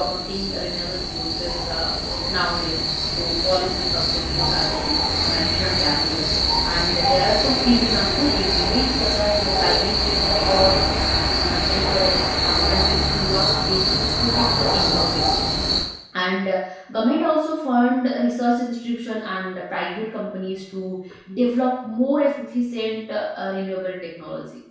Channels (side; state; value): both; identical; correlation 1.00